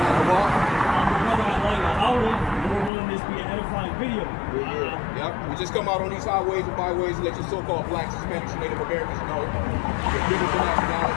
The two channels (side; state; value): right; drops out; at 2.9 s